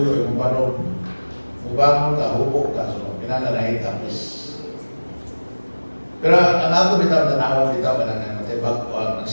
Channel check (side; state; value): both; inverted; correlation -1.00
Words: yung banong. Mubangon ka, hubok ka. So, pinananahin tapos. Pero ang ako bitaw, tanawan bitaw, Natay bago ang